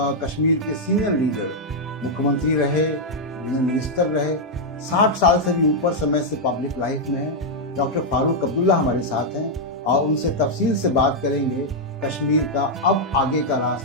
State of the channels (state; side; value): normal; both; correlation -0.02